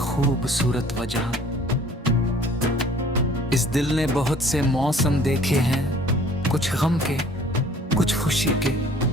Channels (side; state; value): both; normal; correlation 0.53